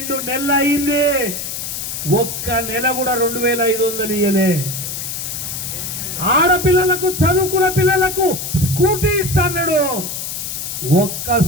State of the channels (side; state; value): left; noise; hiss, 5 dB below the sound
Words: నెలలు అయింది, ఒక్క నెల కూడా 2500 ఇయ్యలే. ఆడపిల్లలకు చదువుకున్న పిల్లలకు స్కూటీ ఇస్తాడు, ఒక్క